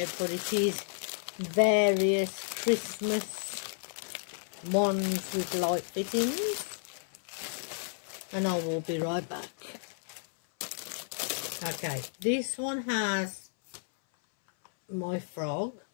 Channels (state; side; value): silent; right; 56 dB below the other